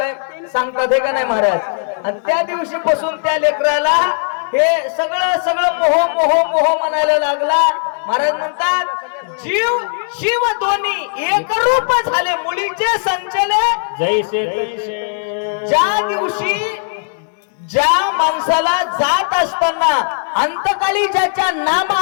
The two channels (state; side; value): silent; right; digital silence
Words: सांगतात, हे का नाही महाराज. आणि त्या दिवशी पासून त्या लेकराला हे सगळं मोह म्हणायला लागला. महाराज म्हणतात जीव शिव दोन्ही एक रूप झाले, मुलीचे संचले जैसे ज्या दिवशी ज्या माणसाला जात असताना अंतकाळी ज्याच्या नाम